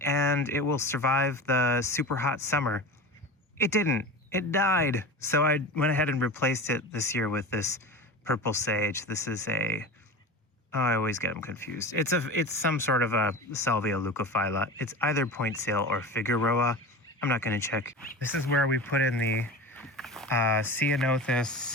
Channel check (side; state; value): both; normal; correlation 0.31